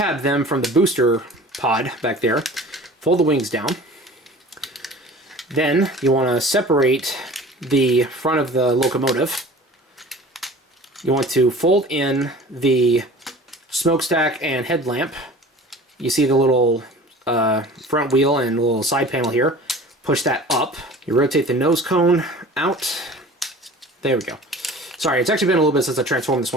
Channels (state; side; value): normal; both; correlation 0.42